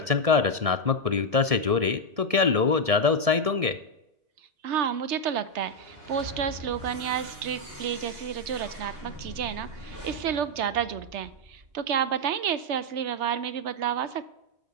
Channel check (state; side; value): late; left; 1.7 ms